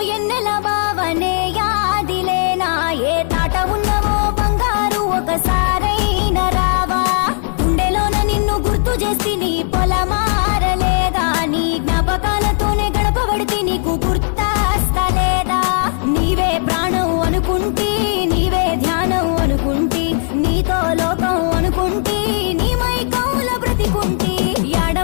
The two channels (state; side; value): silent; right; 58 dB below the other